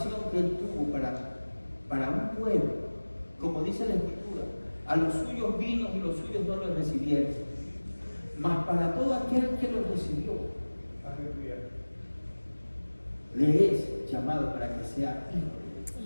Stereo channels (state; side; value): inverted; both; correlation -1.00